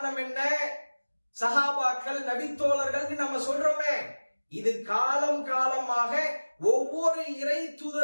என்ன? சஹாபாக்கள், நபித்தோழர்கள் நம்ம சொல்றோமே, இது காலம் காலமாக ஒவ்வொரு இறை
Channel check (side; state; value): both; inverted; correlation -1.00